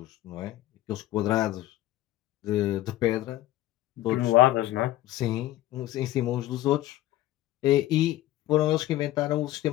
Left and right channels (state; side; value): quieter; right; 15.2 dB